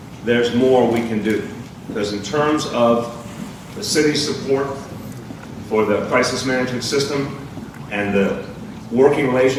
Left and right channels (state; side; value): identical; both; correlation 1.00